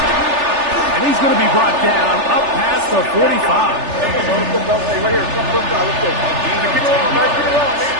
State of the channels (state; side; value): late; left; 3.4 ms